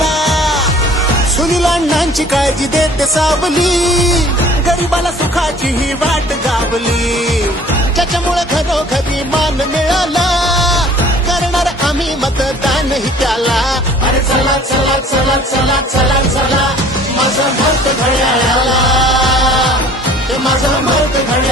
सुनील अण्णांची काळजी देते सावली, गरिबाला सुखाची ही वाट गावली. ज्याच्यामुळे घरोघरी मान मिळाला, करणार आम्ही मतदानही त्याला. अरे चला चला चला चला चला चला, माझं मत घड्याळाला, माझं मत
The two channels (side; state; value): both; normal; correlation 0.51